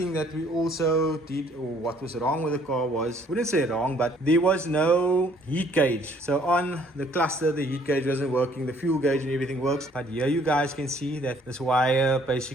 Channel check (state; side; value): normal; both; correlation 0.61